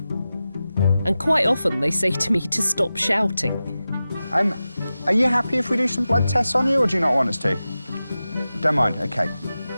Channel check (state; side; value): inverted; both; correlation -0.94